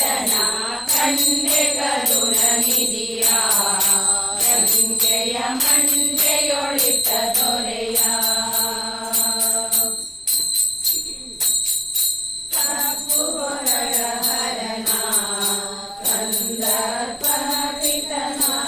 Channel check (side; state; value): both; identical; correlation 1.00